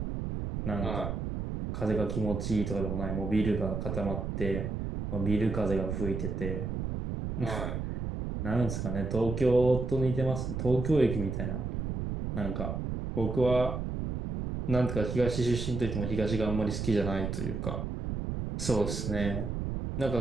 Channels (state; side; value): noise; right; rumble, 3 dB below the sound